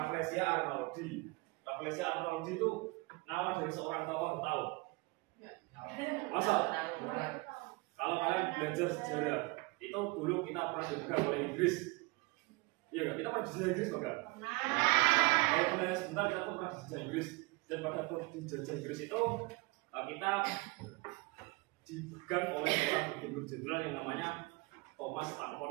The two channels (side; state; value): left; quieter; 25.1 dB